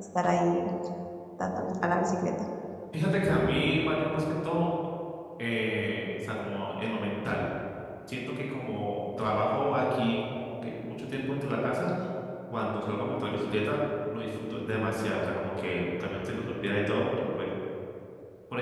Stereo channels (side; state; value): both; identical; correlation 1.00